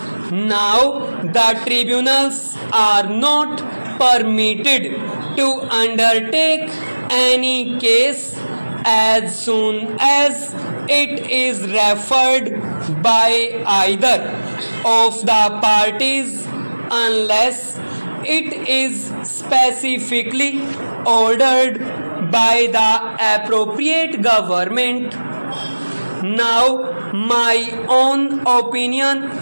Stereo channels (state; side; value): inverted; both; correlation -1.00